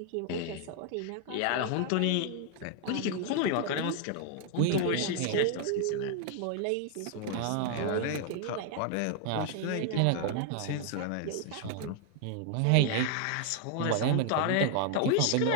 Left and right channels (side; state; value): both; different; correlation 0.00